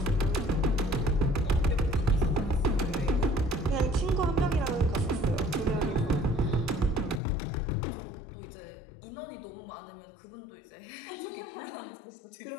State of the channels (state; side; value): drops out; right; at 7.2 s